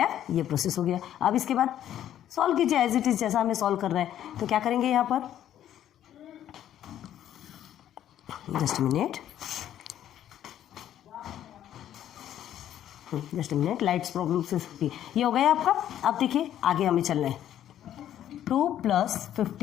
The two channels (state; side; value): quieter; right; 11.3 dB